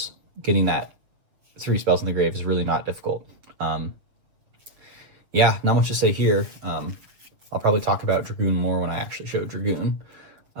getting that 3 spells in the grave is really not difficult. Yeah, not much to say here. I'll probably talk about Dragoon more when I actually show Dragoon.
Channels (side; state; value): left; late; 7.3 ms